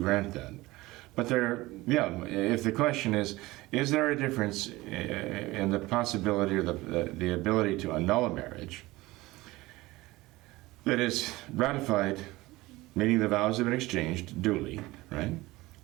that. But if the question is there a difference in the possibility or the ability to annul a marriage that is ratified, meaning the vows have been exchanged duly, right?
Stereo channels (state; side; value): quieter; left; 19.7 dB